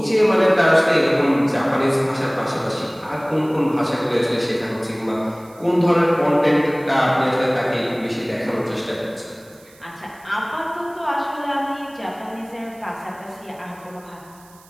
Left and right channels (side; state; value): right; noise; hiss, 26 dB below the sound